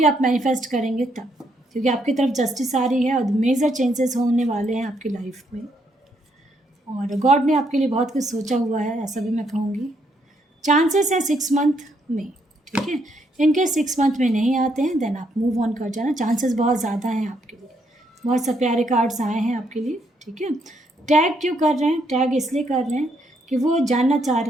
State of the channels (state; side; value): normal; both; correlation 0.74